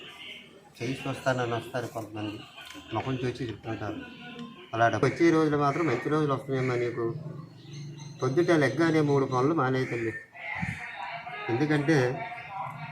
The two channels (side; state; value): both; identical; correlation 1.00